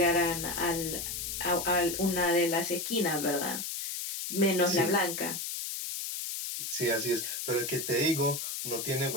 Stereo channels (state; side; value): noise; left; hiss, 4 dB below the sound